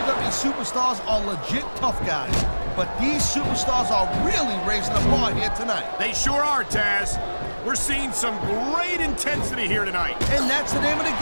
superstars are legit tough guys. But these superstars are really raising the bar here tonight. They sure are, Taz. We're seeing some great intensity here tonight. And that's the name of the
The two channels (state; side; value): inverted; both; correlation -1.00